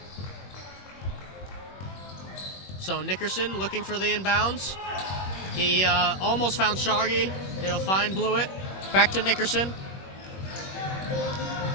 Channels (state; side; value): late; right; 21 ms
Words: So Nickerson looking for the inbounds. He almost found Shargi. He'll find Blewett. Back to Nickerson.